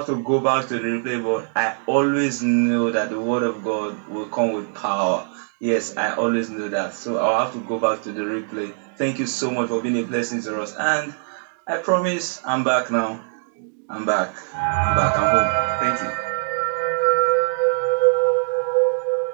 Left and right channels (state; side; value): silent; left; digital silence